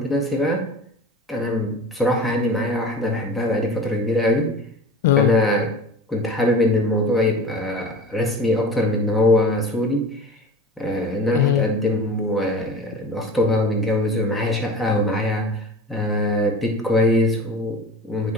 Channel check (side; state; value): both; normal; correlation 0.36